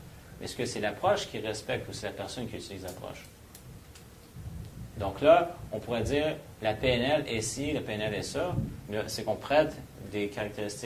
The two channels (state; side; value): identical; both; correlation 1.00